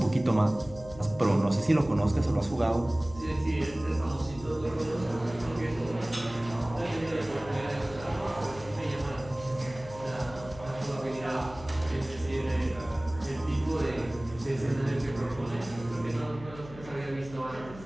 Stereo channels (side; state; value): left; noise; hum, 16 dB below the sound